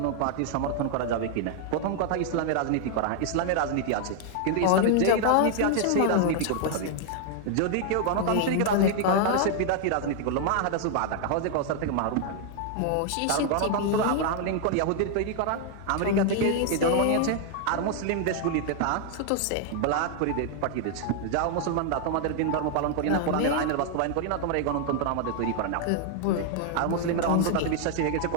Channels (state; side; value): different; both; correlation 0.00